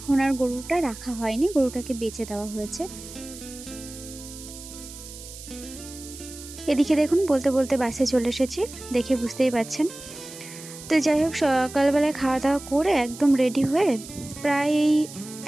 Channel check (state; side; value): noise; right; hiss, 15 dB below the sound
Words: আর গরুটা রাখা হয়নি, গরুটাকে বেচে দেওয়া হয়েছে। এদিকে দেখুন বলতে বলতে বাসে চলে এসেছি, দেখে বুঝতেই পারছেন। তো যাই হোক, সকালবেলায় খাওয়া দাওয়া করে একদম রেডি হয়ে প্রায় এই